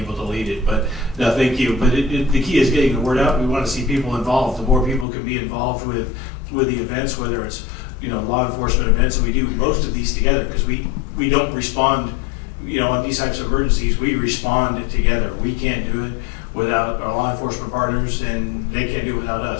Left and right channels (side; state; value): right; drops out; at 5.1 s